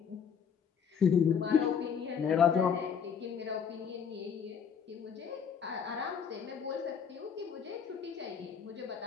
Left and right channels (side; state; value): right; quieter; 7.1 dB